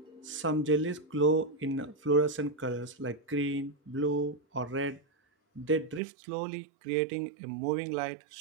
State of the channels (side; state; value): left; drops out; at 6.0 s